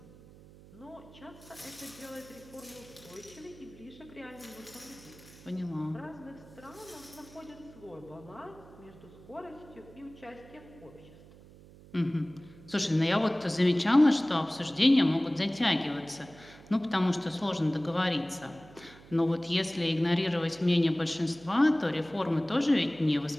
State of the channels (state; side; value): noise; right; hum, 21 dB below the sound